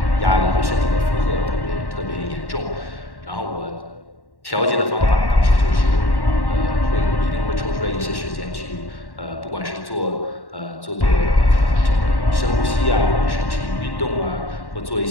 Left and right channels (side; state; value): right; late; 1.1 ms